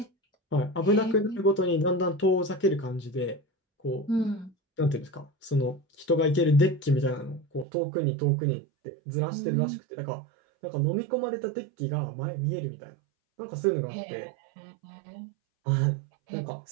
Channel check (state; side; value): drops out; left; at 7.7 s